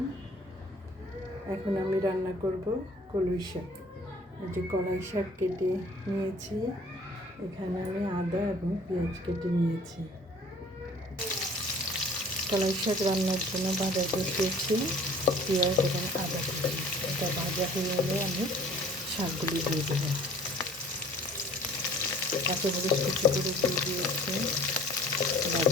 এখন আমি রান্না করব কলই শাক। এই যে কলাই শাক কেটে নিয়েছি, এখানে আমি আদা এবং পেঁয়াজ কেটে নিয়েছি। কলাই শাক রান্নার জন্য বাজার বসিয়েছি, পেঁয়াজ এবং আদা কেটে। এটা ভাজা হয়ে গেলে আমি শাকগুলি দিয়ে দেবো। কাঁচামরিচ কুচি করে দিয়ে দিয়েছি,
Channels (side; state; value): both; normal; correlation 0.51